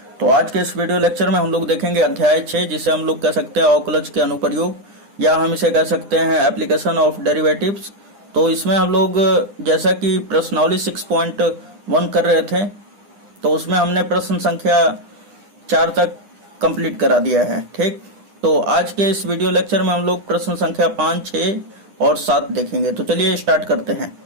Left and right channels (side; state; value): left; late; 9.9 ms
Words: तो आज के इस वीडियो लेक्चर में हम लोग देखेंगे अध्याय 6, जिसे हम लोग कह सकते हैं अवकलज के अनुप्रयोग, या हम इसे कह सकते हैं एप्लीकेशन ऑफ डेरिवेटिव्स। तो इसमें हम लोग जैसा कि प्रश्नावली 6.1 कर रहे थे, तो उसमें हमने प्रश्न संख्या 4 तक कंप्लीट करा दिया है। ठीक, तो आज के इस वीडियो लेक्चर में हम लोग प्रश्न संख्या 5, 6 और 7 देखेंगे। तो चलिए स्टार्ट करते हैं।